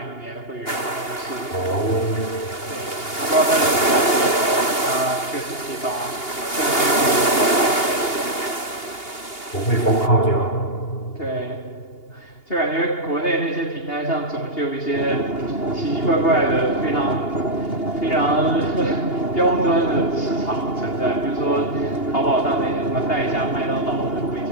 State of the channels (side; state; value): right; late; 2.8 ms